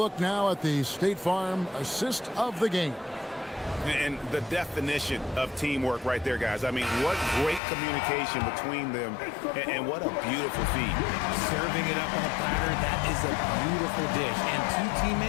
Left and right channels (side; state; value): right; drops out; at 7.6 s